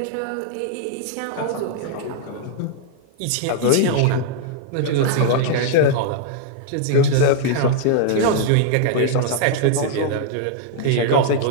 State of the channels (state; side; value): different; both; correlation -0.01